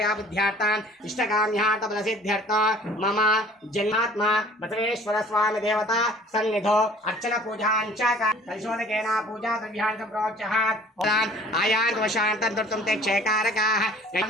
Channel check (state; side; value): normal; both; correlation 0.51